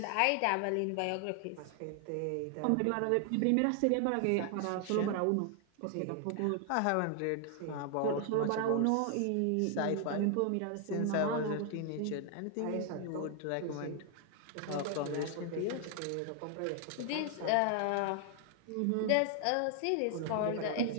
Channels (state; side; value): different; both; correlation 0.00